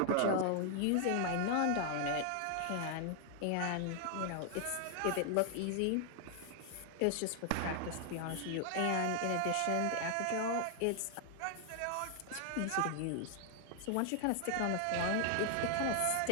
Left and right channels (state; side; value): different; both; correlation 0.00